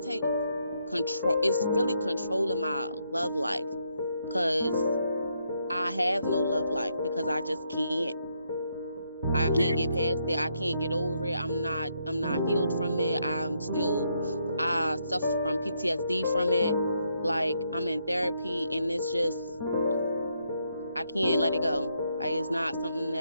control. It's really controlling my love life, because I have no love life, because I just can't. I can't get past it. I can't get over it. I'm not healed from it. I suffer from PTSD from it. Like, I'm in therapy, and it's just, I can't let it go. Like, it's not something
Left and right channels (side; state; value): both; inverted; correlation -0.76